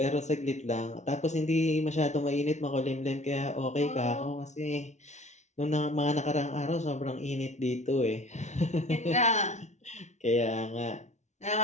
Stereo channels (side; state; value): right; late; 0.33 ms